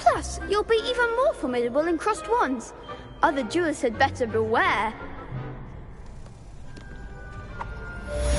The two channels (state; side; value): identical; both; correlation 1.00